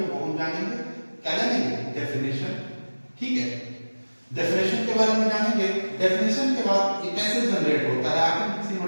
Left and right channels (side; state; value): both; inverted; correlation -1.00